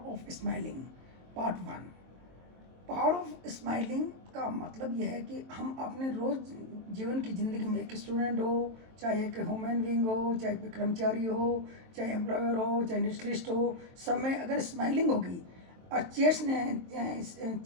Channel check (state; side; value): late; left; 23 ms